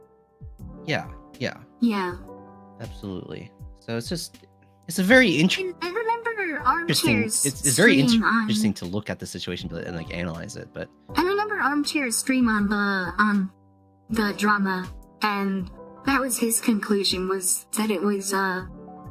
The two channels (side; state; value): both; identical; correlation 1.00